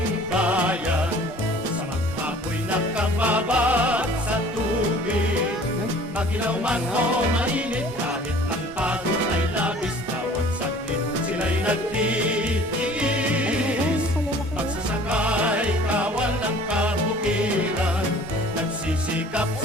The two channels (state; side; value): normal; both; correlation 0.49